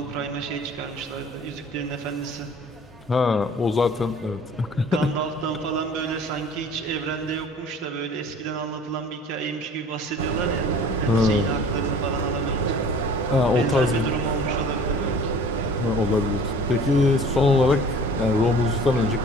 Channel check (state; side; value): normal; both; correlation 0.47